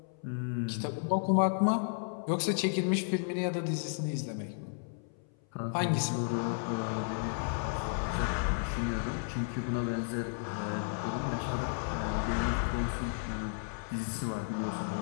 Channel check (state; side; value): silent; right; 56 dB below the other